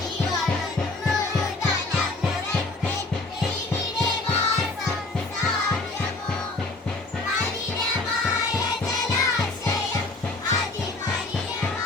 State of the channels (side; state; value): right; quieter; 3.1 dB